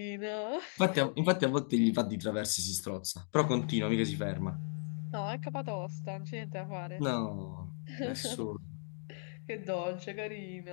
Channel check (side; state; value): right; silent; 54 dB below the other